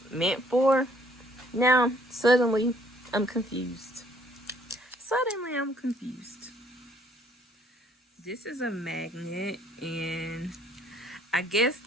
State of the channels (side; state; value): both; normal; correlation 0.63